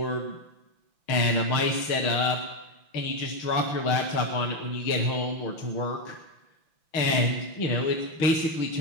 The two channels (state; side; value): late; right; 5.9 ms